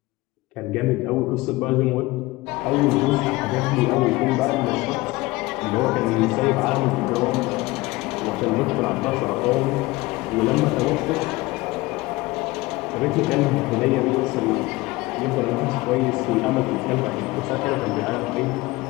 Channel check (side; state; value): right; quieter; 20.7 dB